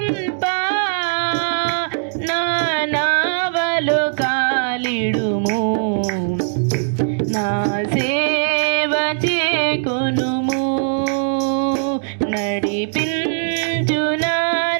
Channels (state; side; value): silent; left; digital silence